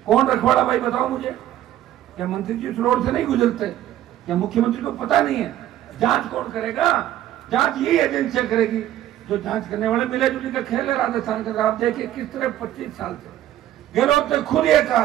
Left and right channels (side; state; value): left; quieter; 12.8 dB